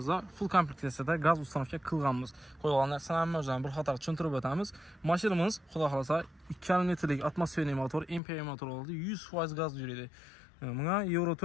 full kompleksiyada gaz ustanovka qilganmiz. Qo'yilgan narsalarni o'zini bir qator tushuntirib o'tamiz. Mashinamiz, xudo xolasa, 2,5 litrlik atmosferli motor, MPI motor oladi. 100% gaz yuradi. Bunga Euro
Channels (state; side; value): drops out; right; at 8.2 s